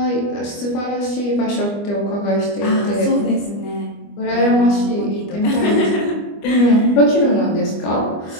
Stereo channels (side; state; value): right; late; 25 ms